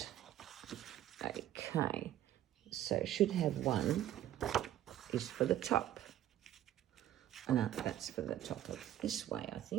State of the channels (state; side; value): quieter; left; 12.4 dB